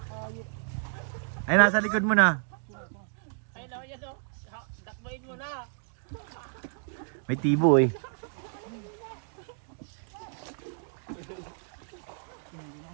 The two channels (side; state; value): left; silent; digital silence